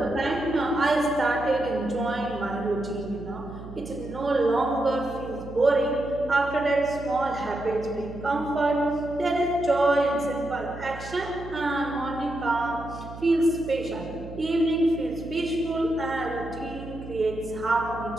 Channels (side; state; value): right; noise; hum, 13 dB below the sound